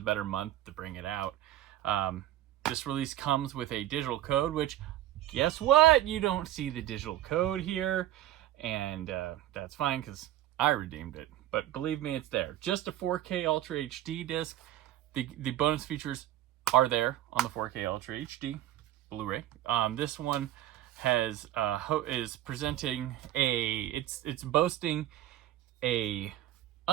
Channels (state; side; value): quieter; left; 13.5 dB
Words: better month to bring it out. This release comes with a digital code, which, guess what? You don't see the digital code here. And that's fine because I redeemed it. But believe me, it's there. Just a 4K Ultra HD disc. The bonus features are there on the 4K Ultra HD Blu-ray. This one has is presenting it's boasting a